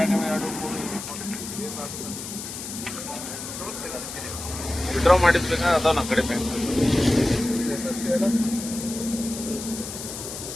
ಎರಡು ವಿಡ್ರಾ ಮಾಡಿದ್ಬೇಕಾ ಅದಾವ ನಮ್ಮ ಕಡೆ ಬ್ಯಾಂಕ್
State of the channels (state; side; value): noise; left; hiss, 8 dB below the sound